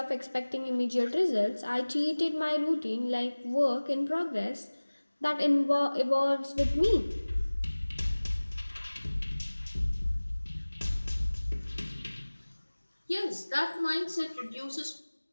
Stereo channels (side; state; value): both; inverted; correlation -1.00